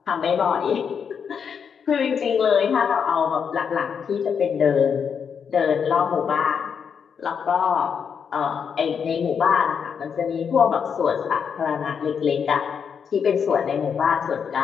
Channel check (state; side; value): quieter; right; 6.9 dB